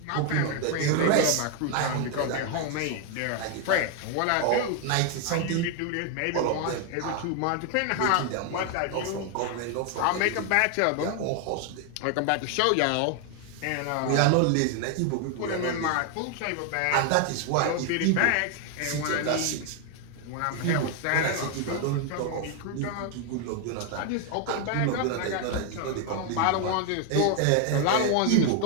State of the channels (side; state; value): both; different; correlation 0.00